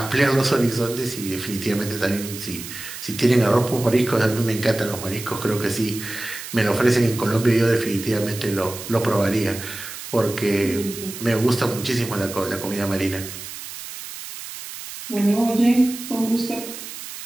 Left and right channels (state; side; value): noise; right; hiss, 11 dB below the sound